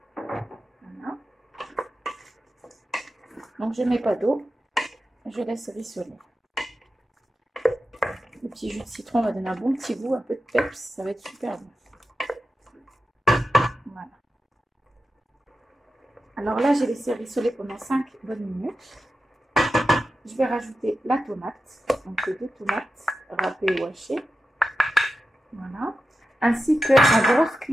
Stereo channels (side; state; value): both; normal; correlation 0.91